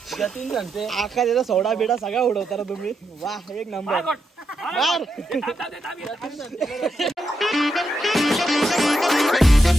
जतीन सांगते आका त्याचा सोडा बिडा सगळा उडवता ना तुम्ही. वा एक नंबर.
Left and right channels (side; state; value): both; normal; correlation 0.83